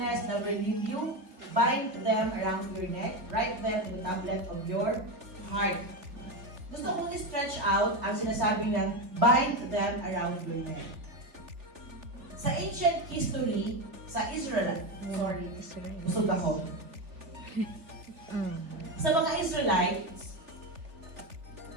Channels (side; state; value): left; late; 3.2 ms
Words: never leave you. Bind them around your neck. Write them in the tablet of your heart. Gusto kong i-stretch out ang sinasabing ng bind them around your neck. Sa ancient history, sa Israel, busog ako. Sa mga Israelites,